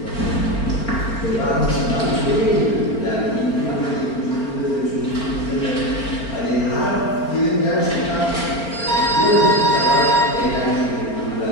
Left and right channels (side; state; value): right; late; 4.4 ms